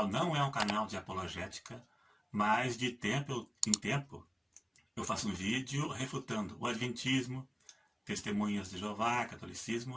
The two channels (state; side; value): identical; both; correlation 1.00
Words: não é um canal de apologética, mas de tempo em tempo eu faço um vídeo refutando o Adventismo, Testemunhas de Jeová, Catolicismo